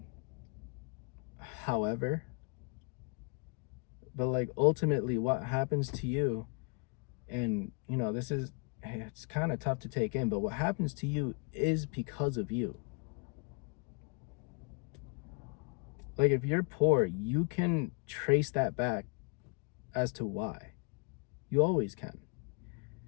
however, but like ultimately what happens to you, and you know, this is, it's kind of tough to take in, but what happens to you is because of you. Like if you're poor, you can trace that back as to why. You always can.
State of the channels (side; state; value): right; quieter; 33.1 dB